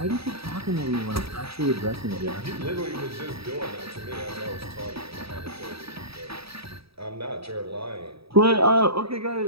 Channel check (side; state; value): left; late; 0.77 ms